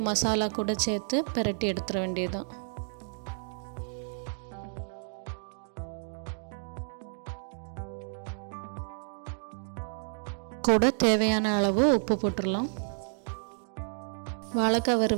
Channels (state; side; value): silent; left; digital silence